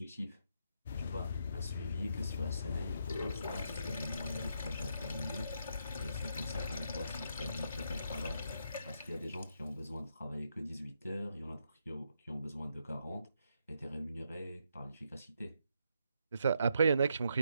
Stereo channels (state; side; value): inverted; both; correlation -0.78